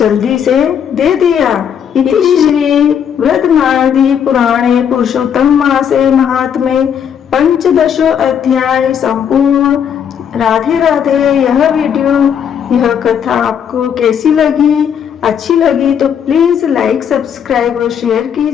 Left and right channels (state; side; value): quieter; right; 8.2 dB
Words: से दे दिया। श्री वृद्धनारदी पुराणे पुरुषोत्तम मासे महात्मे 15 अध्याय संपूर्ण। राधे राधे। यह कथा आपको कैसी लगी? अच्छी लगी तो प्लीज लाइक, सब्सक्राइब और शेयर